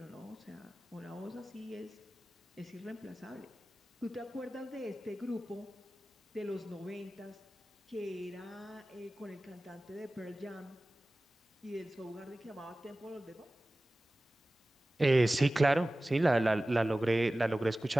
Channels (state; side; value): normal; both; correlation 0.97